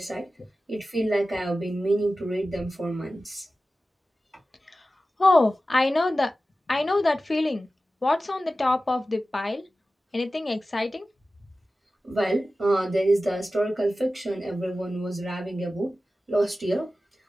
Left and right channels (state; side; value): normal; both; correlation 0.95